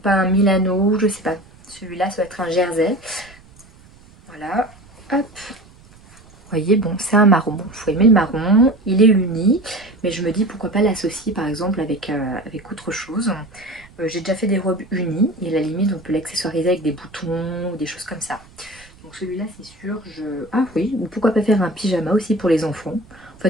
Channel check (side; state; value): right; noise; rumble, 25 dB below the sound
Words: pas un Milano, je sais pas. Celui-là, ça va être un jersey. Voilà. Hop. Vous voyez, bon, c'est un marron. Bon, il faut aimer le marron. Il est uni. Mais je me dis, pourquoi pas l'associer, par exemple, avec autre chose. J'ai déjà fait des robes unies. Et à la limite, on peut l'accessoiriser avec des boutons ou des choses comme ça. Donc celui-là, c'est sûr, Ah oui, ou pourquoi pas faire un pyjama aussi pour les enfants. En